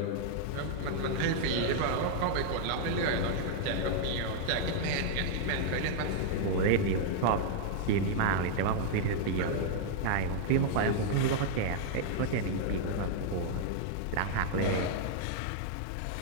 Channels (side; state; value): both; different; correlation -0.01